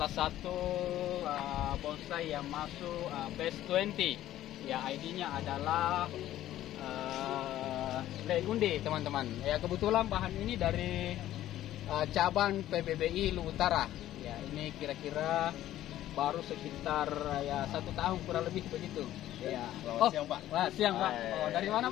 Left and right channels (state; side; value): quieter; right; 13.4 dB